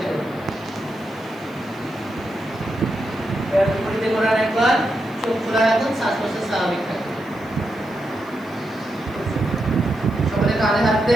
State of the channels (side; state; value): right; noise; hiss, 28 dB below the sound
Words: করুন। এবার বিপরীতে করার একবার চোখ খোলা রাখুন, শ্বাস প্রশ্বাস স্বাভাবিক থাকুন। সকলে কাঁধে হাত